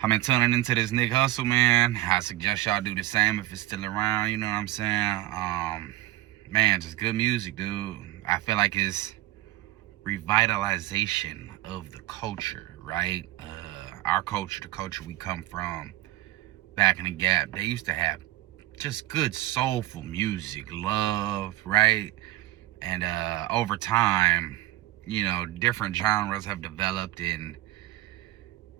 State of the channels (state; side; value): quieter; left; 16.5 dB